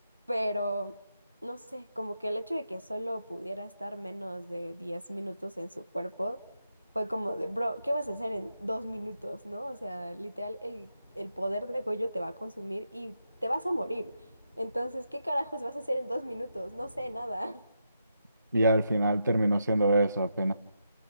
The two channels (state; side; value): inverted; both; correlation -0.84